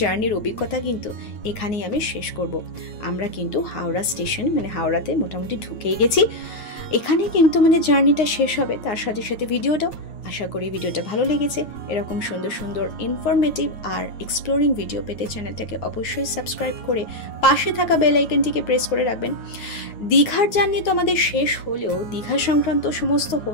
জার্নির অভিজ্ঞতা কিন্তু এখানেই আমি শেষ করব। আমরা কিন্তু হাওড়া স্টেশন হাওড়াতে মোটামুটি ঢুকেই গেছি। এখানে কিন্তু জার্নিটা শেষ হবে, তার সাথে সাথে ভিডিওটাও। আশা করি ভিডিওটা ভালো লেগেছে। এরকম সুন্দর ইনফরমেটিভ আর এক্সপ্লোরিং ভিডিও পেতে চ্যানেলটাকে অবশ্যই সাবস্ক্রাইব করে পাশে থাকা বেল আইকনটিকে প্রেস করে রাখবেন। দীঘার জার্নি তো আমাদের শেষ হলেও দীঘা সংক্রান্ত সমস্ত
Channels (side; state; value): right; late; 9.5 ms